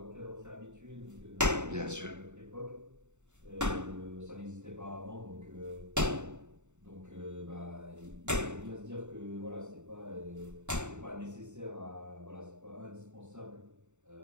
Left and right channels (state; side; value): late; left; 0.84 ms